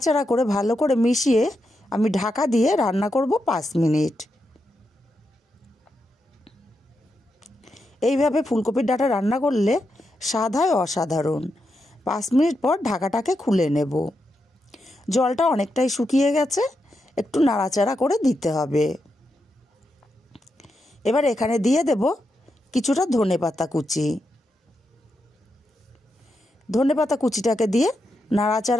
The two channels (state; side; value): normal; both; correlation 0.85